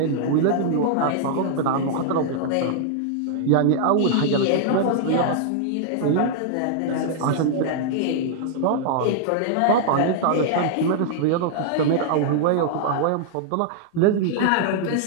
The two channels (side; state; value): both; different; correlation -0.01